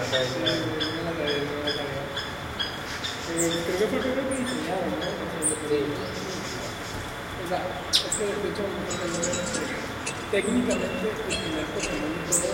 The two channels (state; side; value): identical; both; correlation 1.00